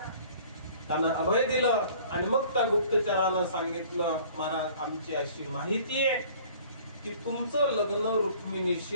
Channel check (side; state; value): both; inverted; correlation -0.51